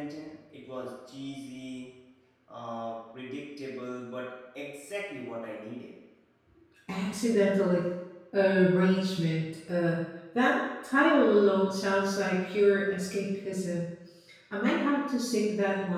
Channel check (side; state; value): both; identical; correlation 1.00